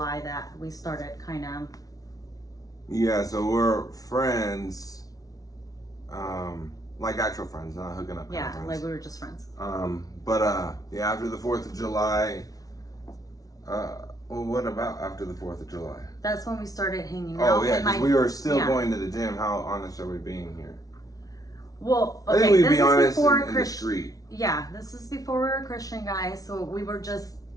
that we started kind of. Yeah, so we're friends, like actual friends, not hooking up. Yeah, friends. like we were just friends. Yeah, after the 4th of July, well, what about after the 4th of July? That's when we started hanging out. Oh, yeah, because we were still going to the gym. How honest are we being here? Well, I think okay, we'd this be is honest before in the street. Yeah, this is before we were Christian guys, so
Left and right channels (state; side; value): late; right; 0.18 ms